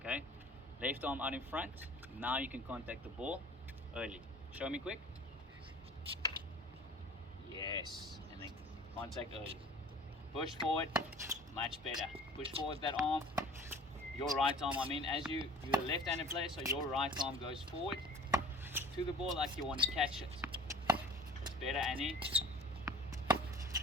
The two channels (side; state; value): both; normal; correlation 0.45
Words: Left arm out in front. Now you can contact the ball early. Show me quick. Yes. And then contact early. Push forward. Much better. Push forward that arm. Your right arm, you're a left-handed player, so your right arm goes forward to the ball like you want to catch it. That's better, Annie.